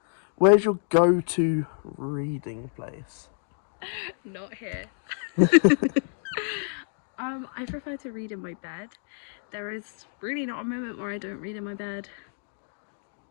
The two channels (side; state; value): right; silent; digital silence